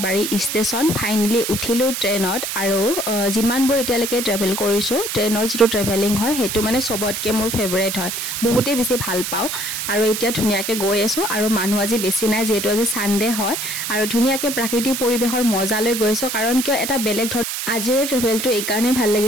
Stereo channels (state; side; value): noise; right; hiss, 3 dB below the sound